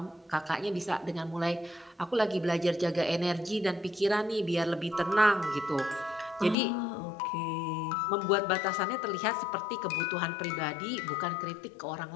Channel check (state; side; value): drops out; right; at 6.6 s